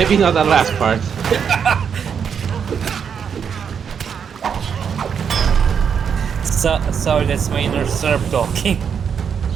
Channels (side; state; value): left; quieter; 7.2 dB